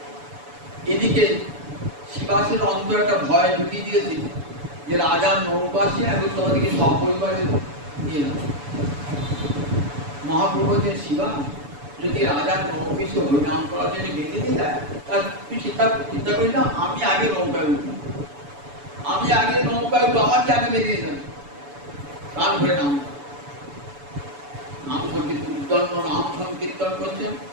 এদিকে শিবা বিকাশের অন্তর একটা ভয় ঢুকিয়ে দিয়েছে যে রাজার নৌকা আসে এখন তোমাদেরকে সপরিবারে নিয়ে যাও। মহাপ্রভু যে শিবা যদি রাজার নৌকে সে হরিনাম করার জন্য বেঁধে দিয়ে দেয়, তার তুই চিন্তা করি না, আমি আগে নৌকায় উঠবো, আমি আগে নৌকায় উঠবো, আমাকে আগে বেঁধে দিয়ে দেবে। প্রাণ ভরে নাম সংকীর্তন করছেন।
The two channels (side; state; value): left; late; 7.0 ms